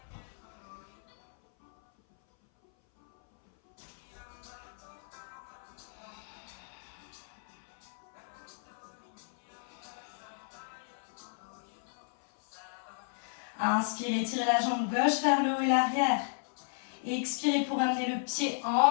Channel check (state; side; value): silent; right; 55 dB below the other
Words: Inspirez, tirez la jambe gauche vers le haut et l'arrière. Expirez pour amener le pied